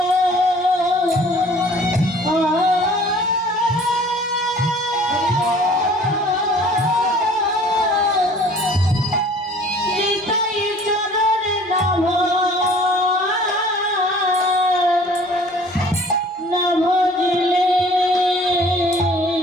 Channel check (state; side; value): normal; both; correlation 0.51